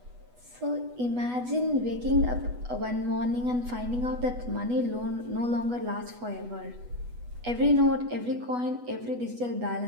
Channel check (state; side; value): late; left; 8.2 ms